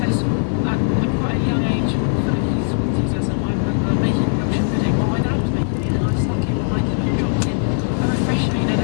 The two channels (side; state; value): right; silent; 66 dB below the other